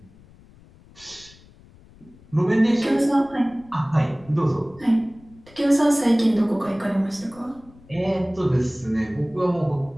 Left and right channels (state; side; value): noise; left; rumble, 25 dB below the sound